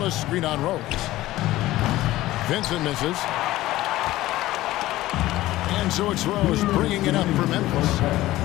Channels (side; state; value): right; quieter; 16.3 dB